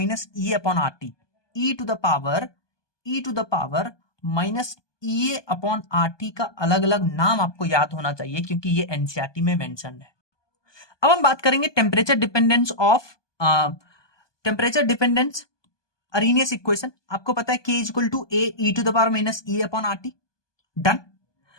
E upon R T, e to the power minus E upon R T का अलग अलग नाम आपको याद होना चाहिए क्योंकि ये एनसीईआरटी में मेंशन है। अब हम बात करेंगे टेम्परेचर डिपेंडेंस अरेनियस इक्वेशन। आपको पता है K equal to A E to the power minus E upon R T.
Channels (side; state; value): right; late; 1.2 ms